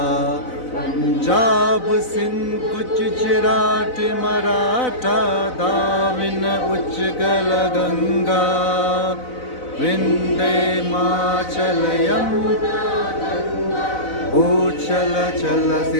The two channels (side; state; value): right; late; 4.0 ms